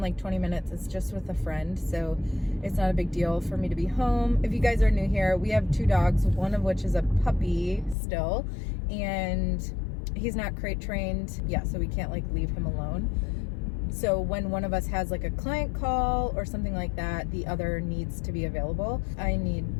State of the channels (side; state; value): right; drops out; at 8.0 s